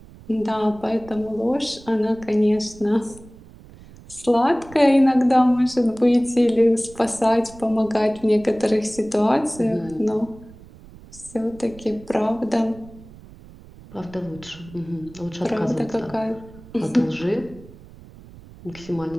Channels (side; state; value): right; noise; rumble, 20 dB below the sound